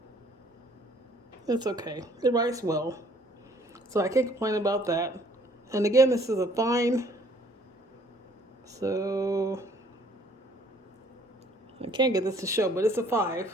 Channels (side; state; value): both; normal; correlation 0.59